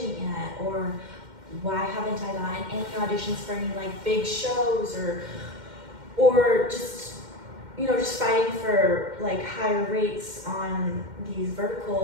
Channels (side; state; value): left; late; 2.1 ms